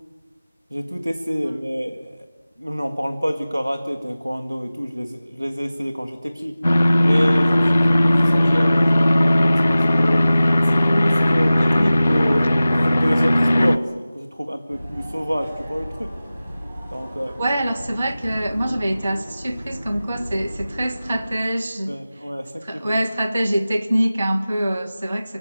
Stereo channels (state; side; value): inverted; both; correlation -0.96